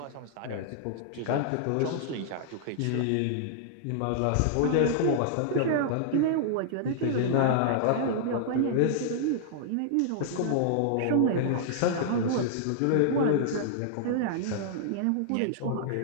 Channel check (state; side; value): different; both; correlation -0.01